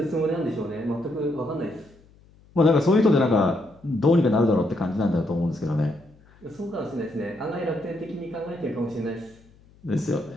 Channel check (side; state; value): left; noise; hum, 28 dB below the sound